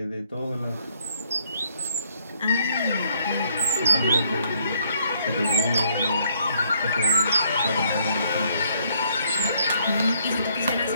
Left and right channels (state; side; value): inverted; both; correlation -0.68